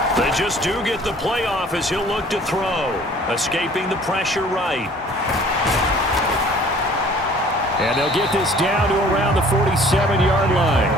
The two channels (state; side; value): normal; both; correlation 0.52